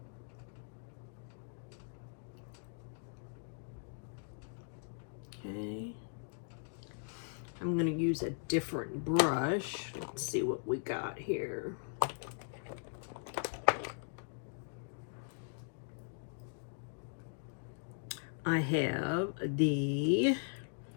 Okay. I'm going to use a different brush. Let's see what we got here. I have the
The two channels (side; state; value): right; silent; digital silence